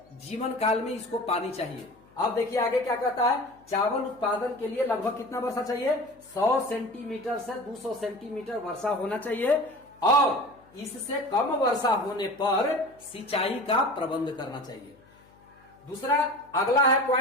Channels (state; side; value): noise; left; hum, 29 dB below the sound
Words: जीवन काल में इसको पानी चाहिए। अब देखिए आगे क्या कहता है, चावल उत्पादन के लिए लगभग कितना वर्षा चाहिए, 100 सेंटीमीटर से 200 सेंटीमीटर वर्षा होना चाहिए, और इससे कम वर्षा होने पर सिंचाई का प्रबंध करना चाहिए। दूसरा अगला है